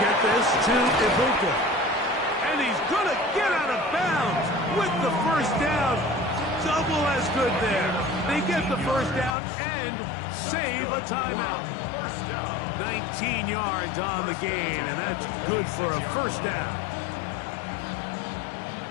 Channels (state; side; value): drops out; right; at 9.3 s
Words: this to Ibuka. And he's going to get out of bounds with the first down. Double as good there. They get the first down and save a timeout. 19 yards on the gain, and that's good for a first down.